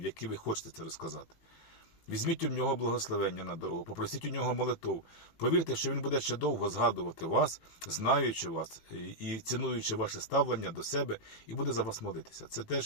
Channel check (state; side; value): late; right; 18 ms